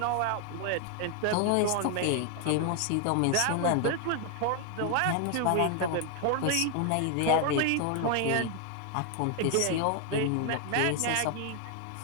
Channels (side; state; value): both; different; correlation 0.00